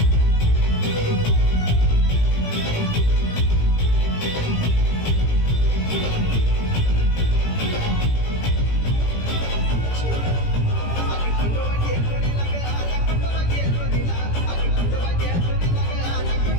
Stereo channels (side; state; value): right; late; 17 ms